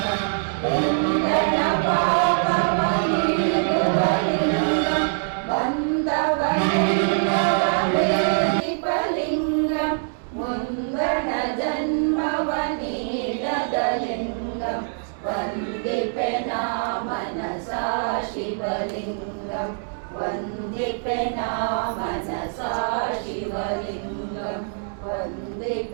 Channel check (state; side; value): silent; left; digital silence